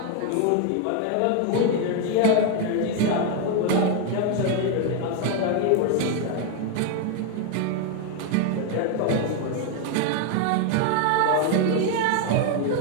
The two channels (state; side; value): different; both; correlation 0.01